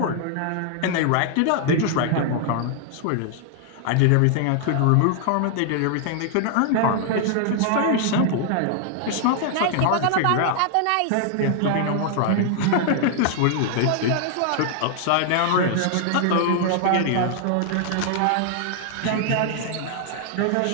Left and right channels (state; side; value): different; both; correlation 0.00